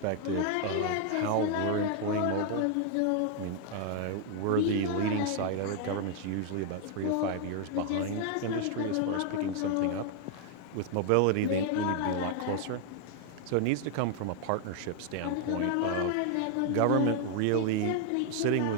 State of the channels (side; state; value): both; different; correlation 0.00